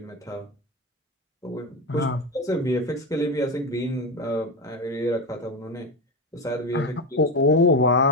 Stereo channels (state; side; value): normal; both; correlation 0.17